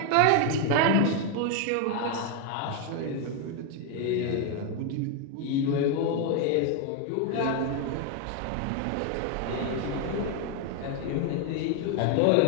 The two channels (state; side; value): different; both; correlation 0.01